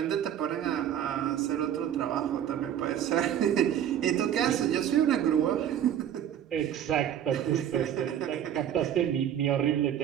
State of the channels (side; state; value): left; quieter; 10.1 dB